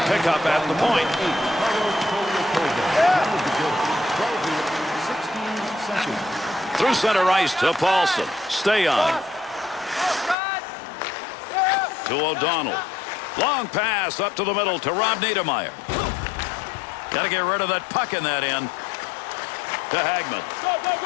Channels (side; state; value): right; drops out; at 10.4 s